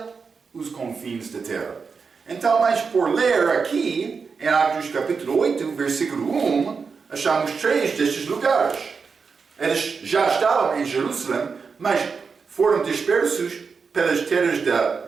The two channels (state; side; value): quieter; left; 5.3 dB